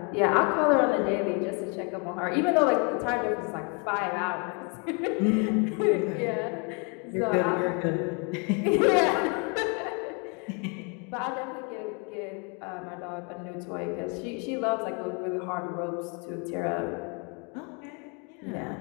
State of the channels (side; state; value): right; quieter; 34.4 dB